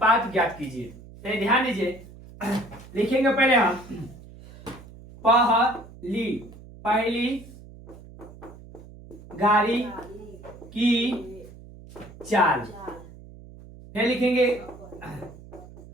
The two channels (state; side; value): noise; right; hum, 18 dB below the sound